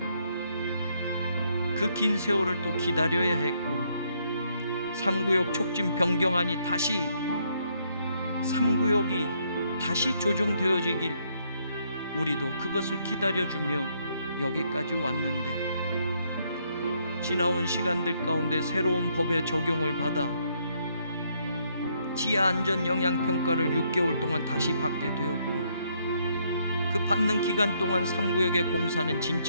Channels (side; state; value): both; inverted; correlation -0.72